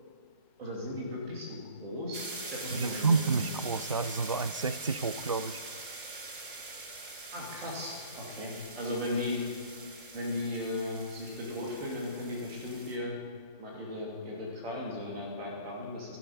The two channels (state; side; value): inverted; both; correlation -0.52